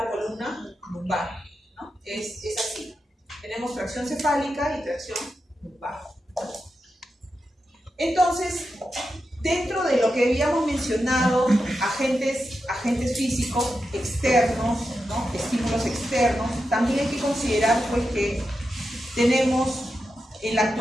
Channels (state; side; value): normal; both; correlation 0.89